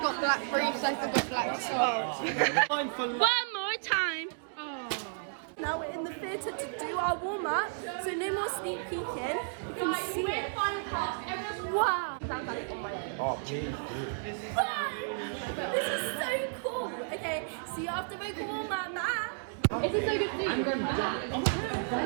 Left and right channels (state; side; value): silent; left; digital silence